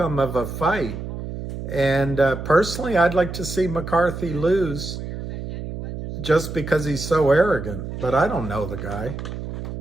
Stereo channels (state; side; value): noise; right; hum, 8 dB below the sound